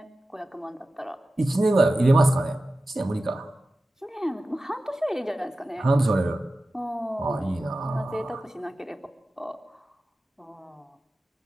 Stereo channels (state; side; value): normal; both; correlation 0.95